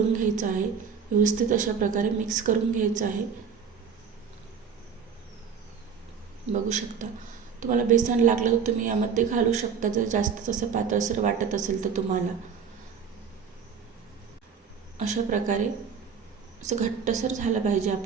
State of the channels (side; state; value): left; quieter; 6.5 dB